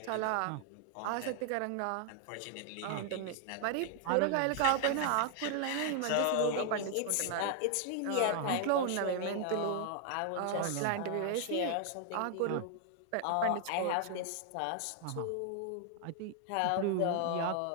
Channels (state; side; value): different; both; correlation 0.00